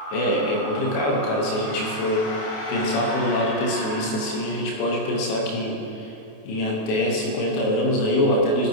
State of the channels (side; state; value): right; late; 28 ms